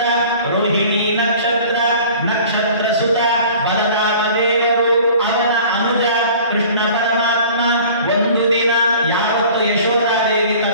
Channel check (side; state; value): both; inverted; correlation -0.46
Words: ರೋಹಿಣಿ ನಕ್ಷತ್ರ, ನಕ್ಷತ್ರ ಸುತ ಬಲರಾಮ ದೇವರು ಅವನ ಅನುಜ ಕೃಷ್ಣ ಪರಮಾತ್ಮ ಒಂದು ದಿನ ಯಾವತ್ತು ಯಶೋಧಾದೇವಿ